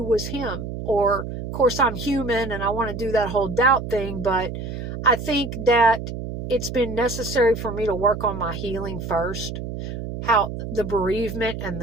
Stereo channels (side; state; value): right; noise; hum, 7 dB below the sound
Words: was him. Or, of course, I'm human and I want to do that whole doubt thing, but I think that it's been necessary for me to work on my healing first. How the bereavement and